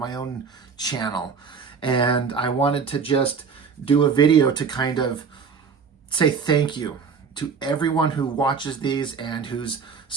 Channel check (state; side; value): quieter; left; 5.9 dB